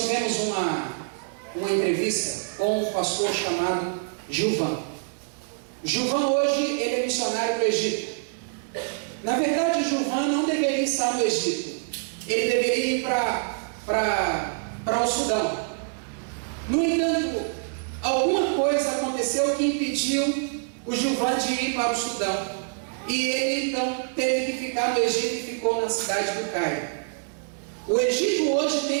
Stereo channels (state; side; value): silent; left; digital silence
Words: tivemos uma entrevista com um pastor chamado Gilvan. Gilvan hoje ele é missionário do Egito. Na verdade, Gilvan não deveria estar no Egito. Ele deveria ir para o Sudão. No entanto, alguma coisa aconteceu que impediu o Gilvan de ir para o Sudão. E ele então teve que ficar no Egito e ficou na cidade do Cairo. O Egito hoje